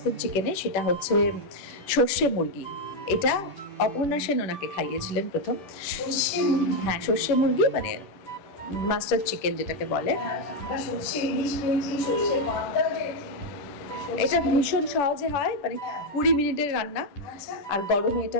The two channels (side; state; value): right; late; 10 ms